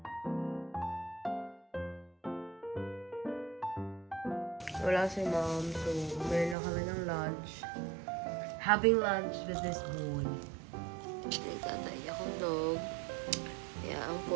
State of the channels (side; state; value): left; drops out; at 6.6 s